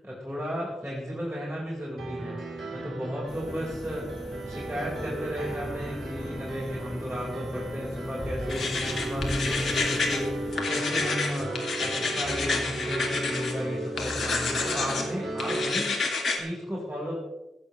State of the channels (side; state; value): both; normal; correlation 0.83